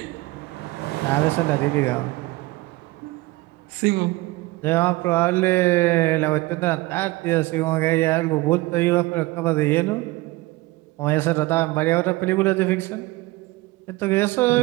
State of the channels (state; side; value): quieter; left; 20.8 dB